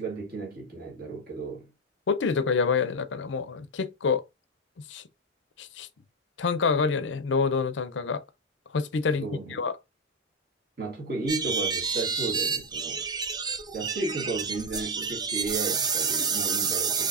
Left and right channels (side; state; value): both; normal; correlation 0.04